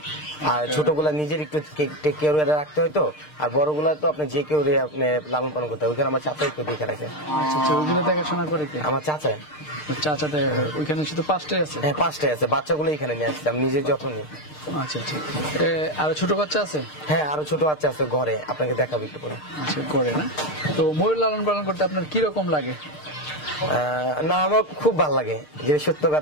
আর ছোটগুলা নিজের একটু টেক কেয়ার রাখতে হয় তো। আর বড়গুলা তো আপনি যে কেউ আপনি লালন পালন করতে হয়, ওইখানে আমার চাচা একটু দেখে রাখে। আচ্ছা, ওইগুলো দেখাশোনা করে কে? আমার চাচা। চাচা দেখা করে? ওইখানে শুধু 5টাই আছে? হ্যাঁ, 5টাই আছে। বাচ্চাগুলো এখানে নিয়ে আসছি, আমি নিজের যত্ন নিই। আচ্ছা আচ্ছা, আরো ছোট বাচ্চা আছে? হ্যাঁ, আরো ছোট বাচ্চা আছে ঘরে, আপনাকে দেখাবো একটু পরে। আচ্ছা, করে না? তো ময়ূর লালন পালন করতে আপনার কিরকম লাগে? না, আমার খুব ভালো লাগে, যে সত্য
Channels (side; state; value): right; late; 6.6 ms